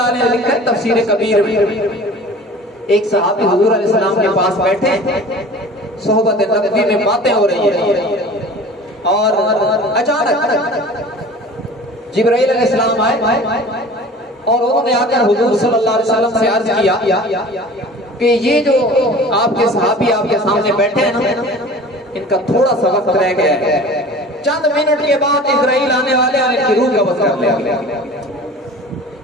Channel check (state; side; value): normal; both; correlation 0.42